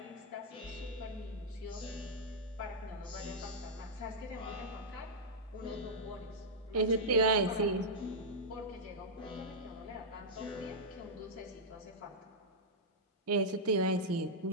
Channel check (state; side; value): normal; both; correlation -0.08